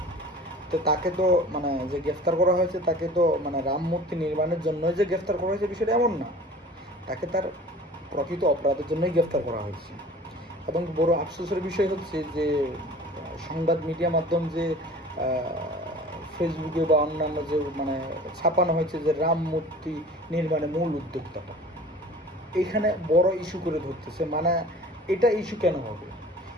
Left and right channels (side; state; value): both; normal; correlation 0.43